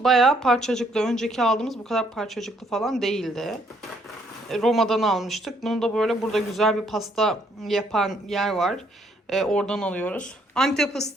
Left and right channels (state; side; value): normal; both; correlation 0.68